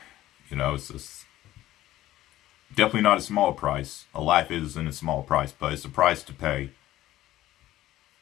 you know, it's just definitely not a small price. A life isn't a small price, but it's a price to pay.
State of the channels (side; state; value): right; quieter; 14.8 dB